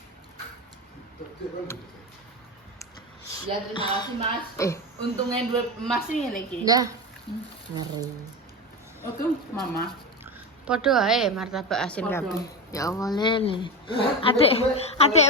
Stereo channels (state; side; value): normal; both; correlation 0.20